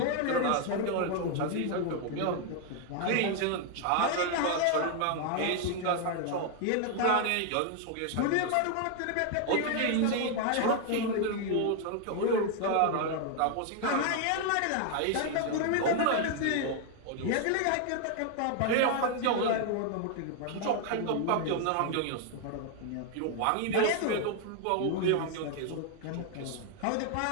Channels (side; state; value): both; different; correlation 0.00